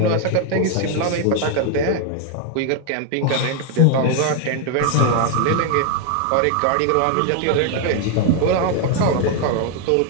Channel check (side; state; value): both; different; correlation 0.01